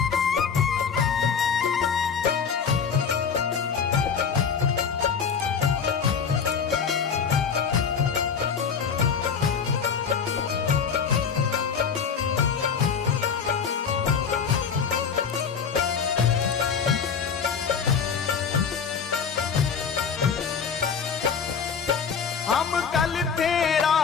हम कल थे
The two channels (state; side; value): quieter; right; 6.5 dB